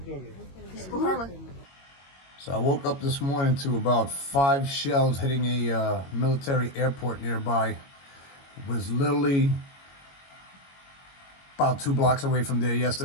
So I woke up this morning to about 5 shells hitting a military airport nearby. It was literally about 2 blocks away from there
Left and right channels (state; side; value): late; right; 22 ms